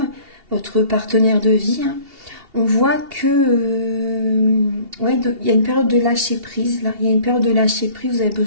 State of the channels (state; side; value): late; left; 2.8 ms